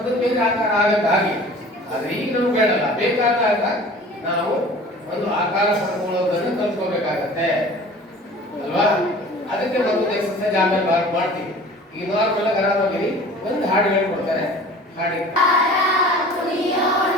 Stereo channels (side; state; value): both; normal; correlation 0.44